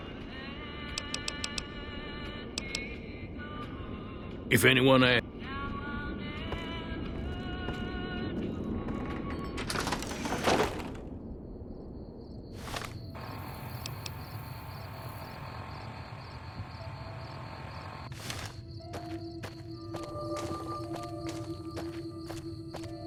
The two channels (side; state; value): both; identical; correlation 1.00